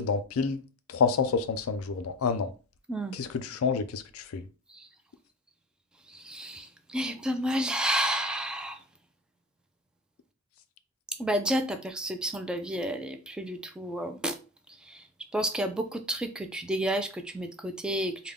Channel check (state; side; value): normal; both; correlation 0.32